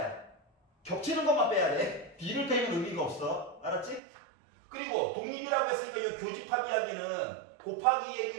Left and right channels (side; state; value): left; drops out; at 4.0 s